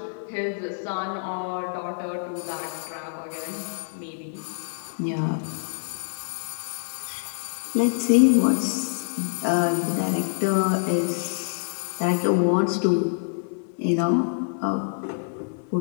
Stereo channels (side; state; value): right; silent; 61 dB below the other